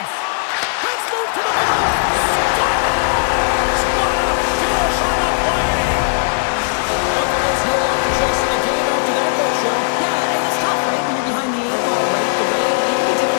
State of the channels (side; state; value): right; silent; digital silence